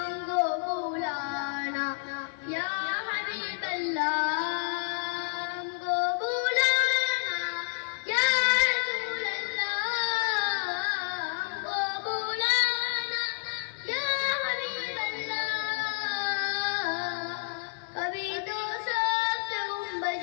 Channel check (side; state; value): right; silent; 56 dB below the other